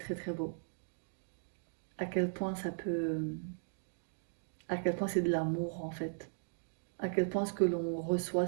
très beau. À quel point à quel point c'est de l'amour en fait. À quel point ce que l'on reçoit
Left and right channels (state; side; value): silent; left; digital silence